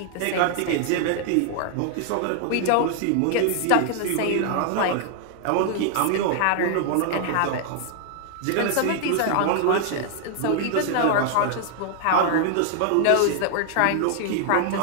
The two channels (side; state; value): both; different; correlation 0.00